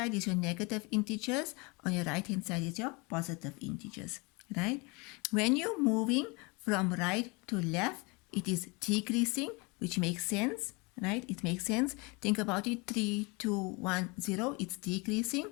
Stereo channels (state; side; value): quieter; right; 28.4 dB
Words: is your negative integers, on your right hand side is your positive integers, right? When you're moving from right to left, it is decreasing, which makes sense, right? It makes sense. Think about it, 3, 2, 1, 0, it's decreasing.